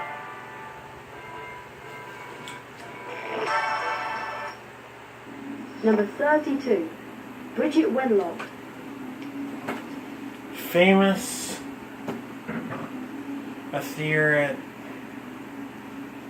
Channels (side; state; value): both; identical; correlation 1.00